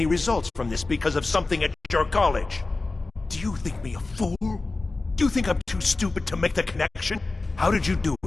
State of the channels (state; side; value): quieter; right; 3.4 dB